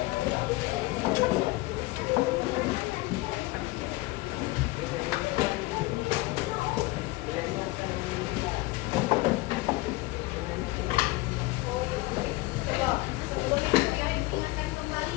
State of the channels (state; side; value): quieter; right; 20.8 dB